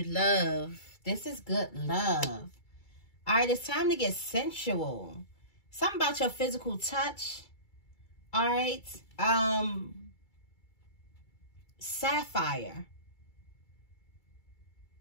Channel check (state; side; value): late; right; 2.3 ms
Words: love. This is good love. All right, it's time to get sensual. Something about your physical touch. All right. Sapphire.